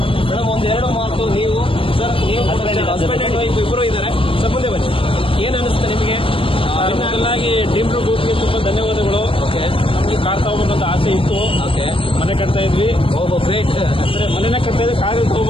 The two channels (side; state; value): right; late; 0.26 ms